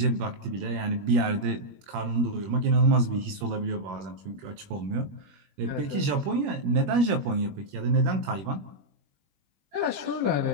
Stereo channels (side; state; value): left; late; 21 ms